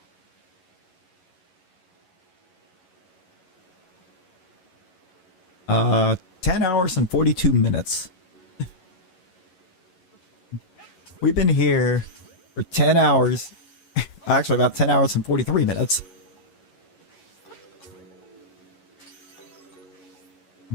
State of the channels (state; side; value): late; right; 11 ms